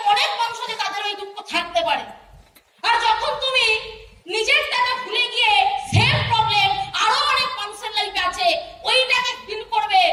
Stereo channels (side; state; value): both; identical; correlation 1.00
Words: অনেক মানুষ আছে তাদের ওই দুঃখ থাকতে পারে। আর যখন তুমি নিজেরটাকে ভুলে গিয়ে সেম প্রবলেম আরো অনেক মানুষের লাইফে আছে, ওইটাকে ফিল করবে,